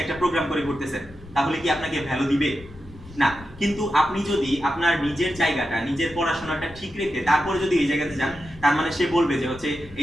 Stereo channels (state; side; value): noise; left; rumble, 19 dB below the sound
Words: একটা প্রোগ্রাম করে ঘুরতেছেন, তাহলে কি আপনাকে ভ্যালু দিবে? না। কিন্তু আপনি যদি আপনার নিজের জায়গাটা, নিজের পড়াশোনাটা ঠিক রেখে তারপরে যদি এই জায়গাতে যান, তার মানে সে বলবে যে হচ্ছে